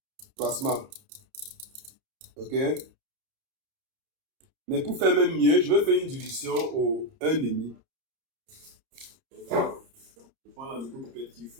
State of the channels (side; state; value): left; late; 30 ms